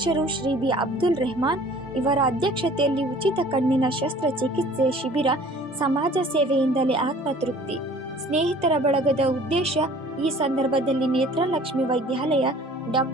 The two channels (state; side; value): normal; both; correlation 0.50